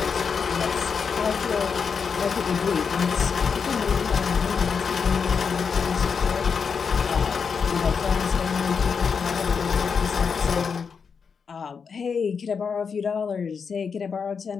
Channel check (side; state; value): right; quieter; 6.0 dB